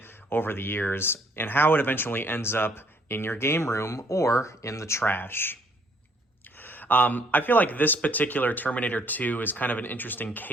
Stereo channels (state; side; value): normal; both; correlation 0.64